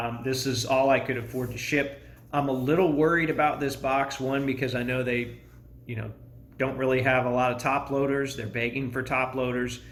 this is all I could afford to ship. I'm a little worried about this box, one, because I know they, don't really have a lot of top loaders. They're begging for top loaders.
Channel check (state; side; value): identical; both; correlation 1.00